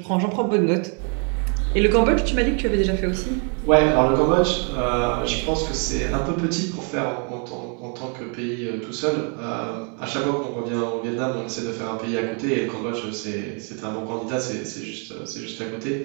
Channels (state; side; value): quieter; left; 39.0 dB